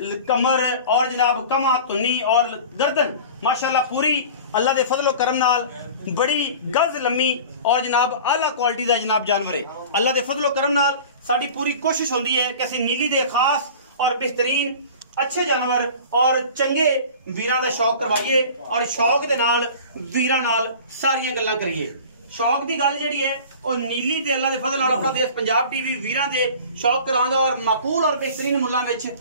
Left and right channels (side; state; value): both; inverted; correlation -0.39